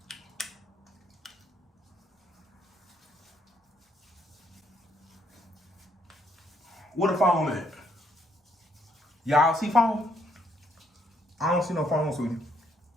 What a foam at? Y'all see foam? I don't see no foam, sweetie.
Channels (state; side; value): normal; both; correlation 0.71